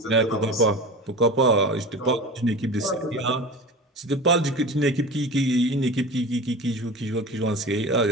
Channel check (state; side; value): normal; both; correlation 0.32